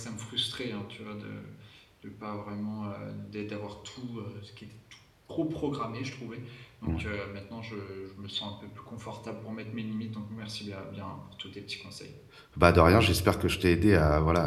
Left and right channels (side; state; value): both; identical; correlation 1.00